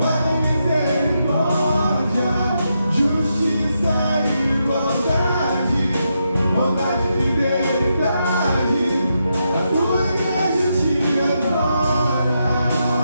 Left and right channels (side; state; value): both; inverted; correlation -0.83